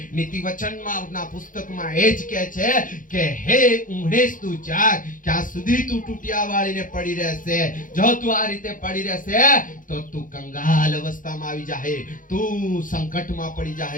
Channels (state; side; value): late; right; 0.39 ms